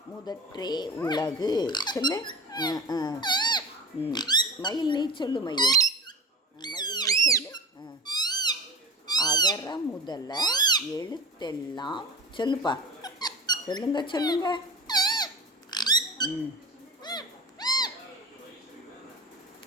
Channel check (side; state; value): both; normal; correlation 0.32